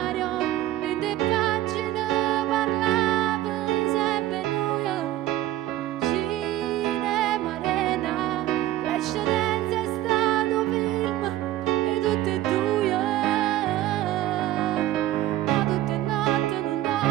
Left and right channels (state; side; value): quieter; left; 14.4 dB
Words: in te pagine parlavi sempre noi, cinema, arena, l'eccedenza è stato film e tutte e due. Ma tutte notte non